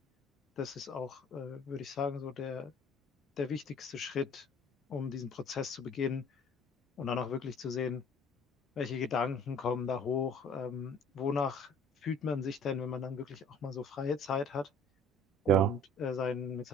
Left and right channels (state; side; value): normal; both; correlation 0.51